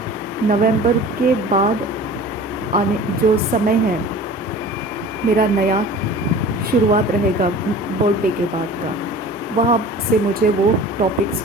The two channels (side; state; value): both; normal; correlation 0.41